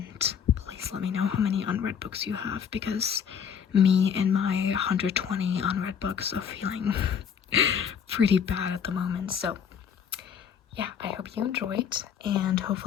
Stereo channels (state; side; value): quieter; right; 7.6 dB